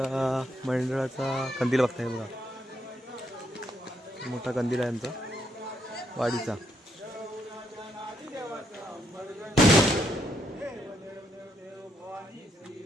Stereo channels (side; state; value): both; normal; correlation 0.76